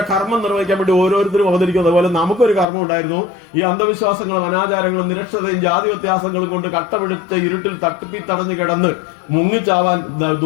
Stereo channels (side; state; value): right; drops out; at 2.7 s